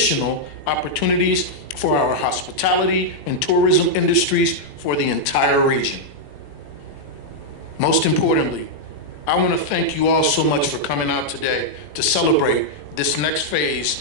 opportunities for our hospitality and tourism industries for the entire region. Most importantly, I want to thank you all so much for coming out today to celebrate this next phase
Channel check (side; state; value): right; late; 21 ms